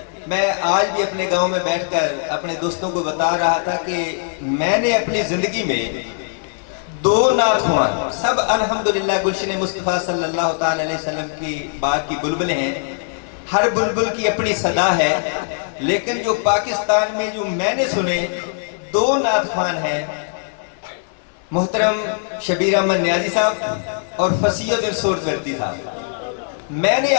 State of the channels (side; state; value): right; silent; digital silence